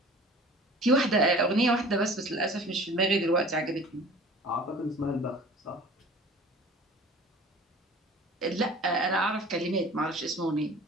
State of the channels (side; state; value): both; normal; correlation 0.44